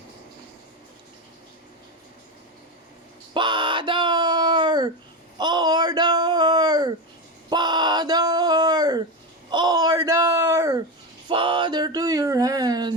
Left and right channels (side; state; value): both; normal; correlation 0.16